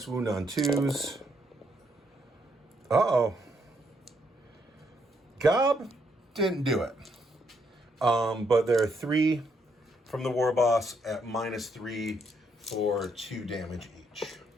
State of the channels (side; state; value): both; normal; correlation 0.75